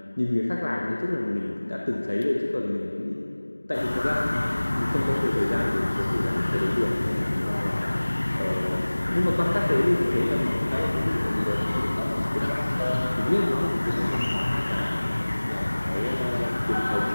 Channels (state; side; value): inverted; both; correlation -1.00